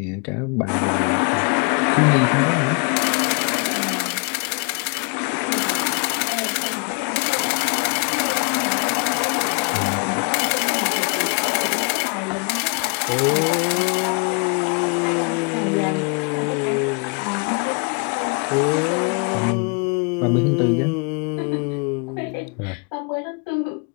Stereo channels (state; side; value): quieter; right; 35.0 dB